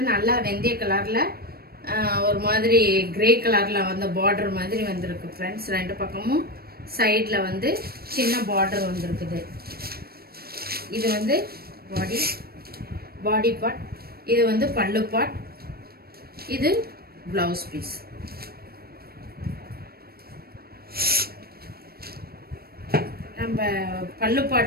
நல்லா வெந்தய கலர்ல ஒரு மாதிரி கிரே கலர்ல வந்து பார்டர் மாதிரி வந்திருக்கு ஃப்ரெண்ட்ஸ். ரெண்டு பக்கமும் சைட்ல வந்து சின்ன பார்டர் வந்திருக்குது. இது வந்து பாடி பார்ட். இது வந்து பல்லு பார்ட். இது பிளவுஸ் பீஸ். நம்ம பல்லு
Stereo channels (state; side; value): late; left; 0.44 ms